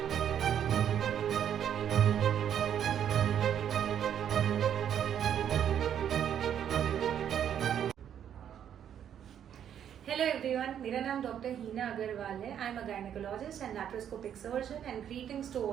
Hello everyone, मेरा नाम डॉक्टर हीना अग्रवाल है। I am a gynaecologist and laparoscopic surgeon and greetings to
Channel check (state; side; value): quieter; left; 9.4 dB